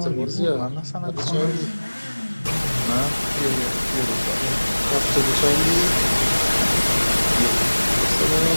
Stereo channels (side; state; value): both; inverted; correlation -1.00